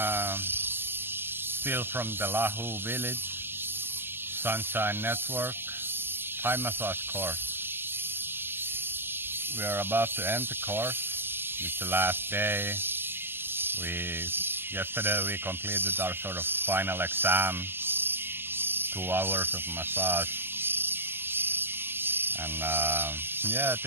still from the Lahu village, Sunshine Network, Thai massage course. We are about to end the course. It's the last day. Yesterday we completed our sort of final exam, 2 hours of massage. And yeah,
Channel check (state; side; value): late; left; 0.10 ms